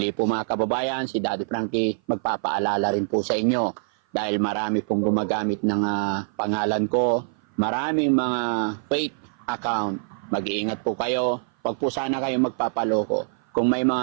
po mga kababayan, si Daddy Frankie magpapaalala rin po sa inyo dahil marami pong gumagamit ng pangalan ko, maraming mga fake account. Mag-iingat po kayo, wag po sana kayo magpapaloko. Kung may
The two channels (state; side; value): silent; left; 56 dB below the other